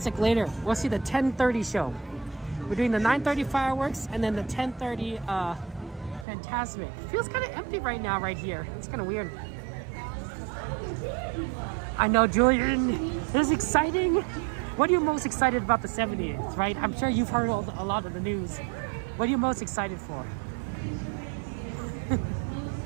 later. We'll see the 10:30 show. We're doing the 9:30 fireworks and then the 10:30 Fantasmic. Feels kind of empty right now right here. It's kind of weird. I know, Julian. This is exciting. What are you most excited about the 70th, right? I'm sure you've heard a lot of the news. What are you most excited for?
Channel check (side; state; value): left; drops out; at 6.2 s